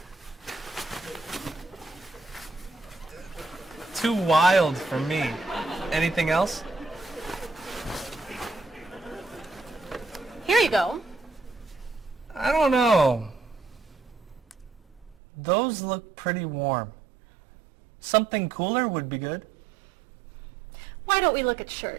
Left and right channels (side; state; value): left; drops out; at 15.2 s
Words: Too wild for me. Anything else? Here you go. I don't know. Those look pretty warm. Something cooler would be good. Why don't we look at